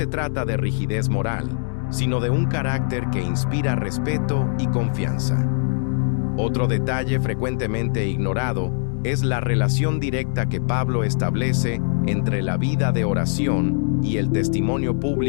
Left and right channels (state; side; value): silent; right; 64 dB below the other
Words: trata de rigidez moral, sino de un carácter que inspira respeto y confianza. Otro detalle frecuentemente ignorado es la relación directa que Pablo establece entre la vida de oración y el testimonio